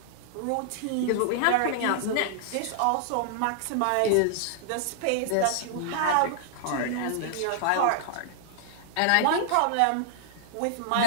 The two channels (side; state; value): both; different; correlation -0.01